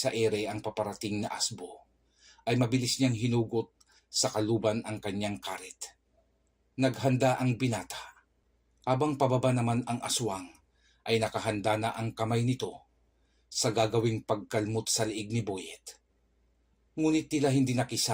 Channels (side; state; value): both; identical; correlation 1.00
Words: ere ang paparating na asbo, ay mabilis niyang hinugot sa kaluban ang kanyang karit. Naghanda ang binata. Habang pababa naman ang aswang, ay nakahanda na ang kamay nito sa gagawing pagkalmot sa liig ni Boyet. Ngunit tila hindi